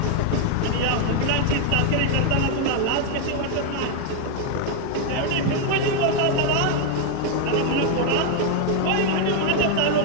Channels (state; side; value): different; both; correlation 0.00